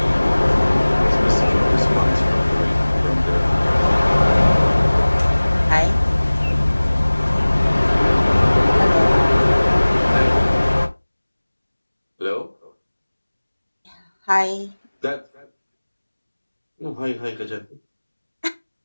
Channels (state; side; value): inverted; both; correlation -1.00